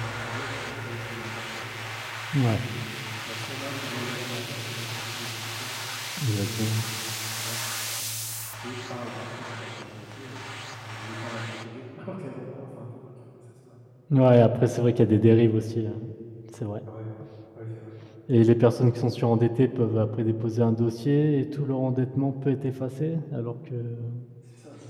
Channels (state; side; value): identical; both; correlation 1.00